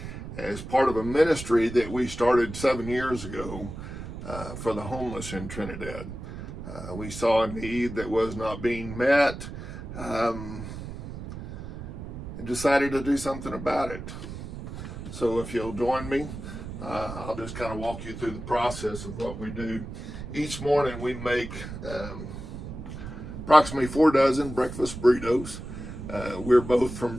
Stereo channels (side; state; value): right; noise; rumble, 9 dB below the sound